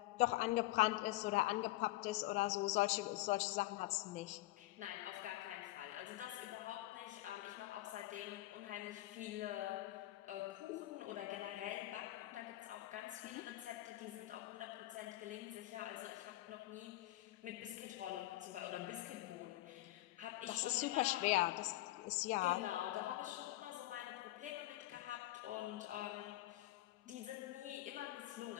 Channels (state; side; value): quieter; right; 17.5 dB